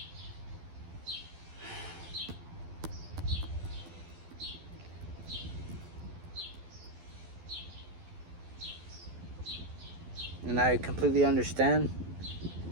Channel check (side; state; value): left; late; 12 ms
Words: And I completely understand